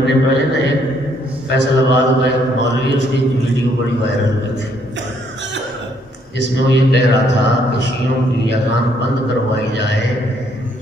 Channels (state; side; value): normal; both; correlation 0.68